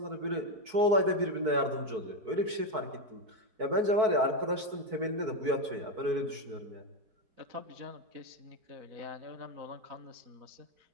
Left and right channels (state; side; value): late; left; 4.6 ms